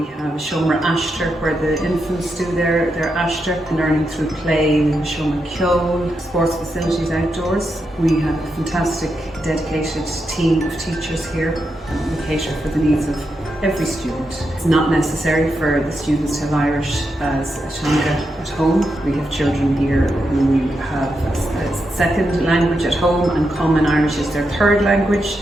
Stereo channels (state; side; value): normal; both; correlation 0.85